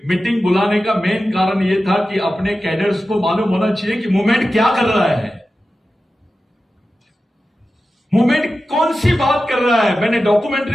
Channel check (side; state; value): both; normal; correlation 0.93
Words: मीटिंग बुलाने का मेन कारण ये था कि अपने कैडर्स को मालूम होना चाहिए कि मूवमेंट क्या कर रहा है, मूवमेंट कौन सी बात कर रहा है। मैंने